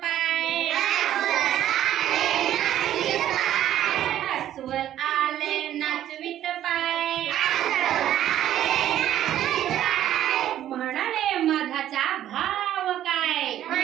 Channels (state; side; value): quieter; left; 11.9 dB